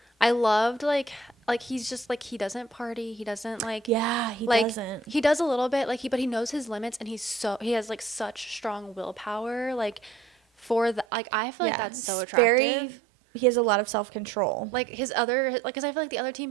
I loved like he's just like he doesn't party. He doesn't like. Yeah, he like, doesn't. He does a little bit but he knows his limits, and he has like such strong willpower. Like for the I feel like that's so attractive. He has a lot of self-control. Like his other because I feel like the other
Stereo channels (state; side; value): drops out; left; at 11.1 s